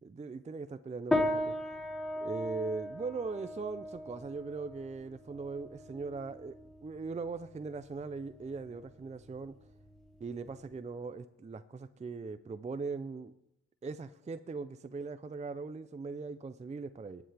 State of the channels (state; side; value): normal; both; correlation 0.72